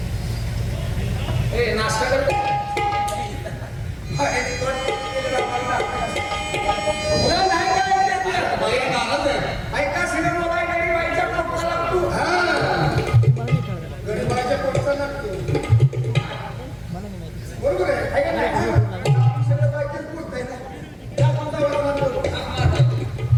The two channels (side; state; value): both; identical; correlation 1.00